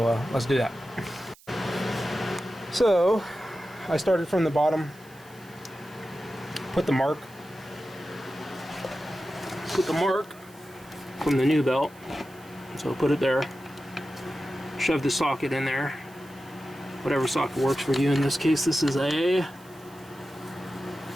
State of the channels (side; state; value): right; noise; hiss, 25 dB below the sound